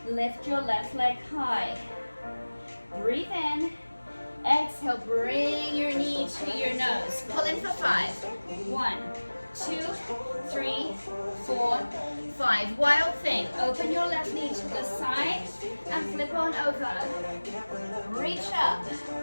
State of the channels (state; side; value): inverted; both; correlation -1.00